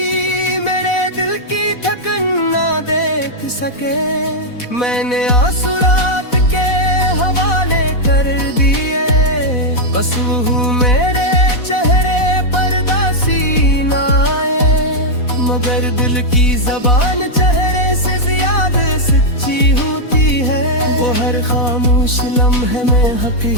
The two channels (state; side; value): late; right; 4.1 ms